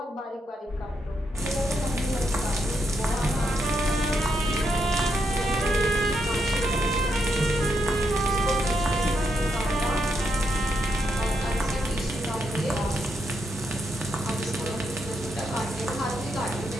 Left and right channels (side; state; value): both; normal; correlation 0.80